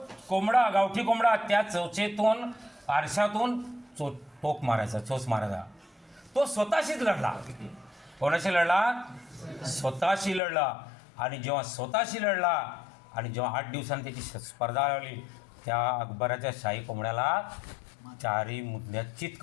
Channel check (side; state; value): right; drops out; at 10.4 s